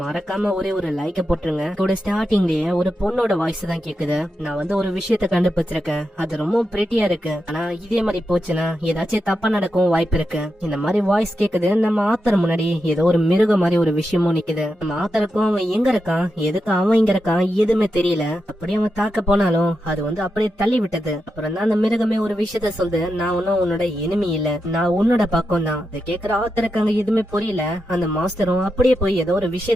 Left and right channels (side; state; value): both; normal; correlation 0.87